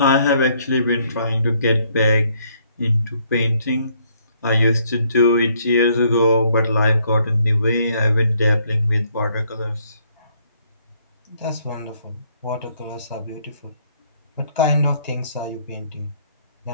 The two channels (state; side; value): inverted; both; correlation -0.68